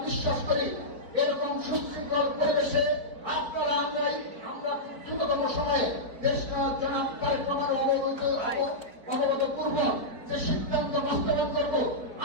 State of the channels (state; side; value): late; left; 4.5 ms